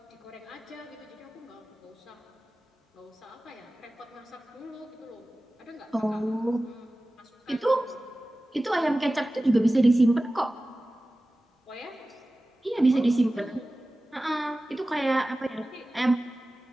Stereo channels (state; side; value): normal; both; correlation 0.96